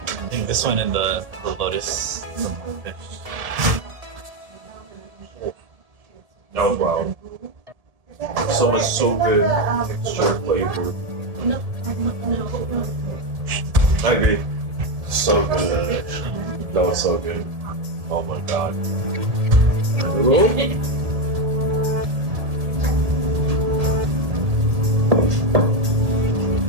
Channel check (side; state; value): left; late; 1.7 ms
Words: think this one and the lotus fish. That was wild. So much, so good texture, flavor. I agree. So good. That was so good. Oh my god.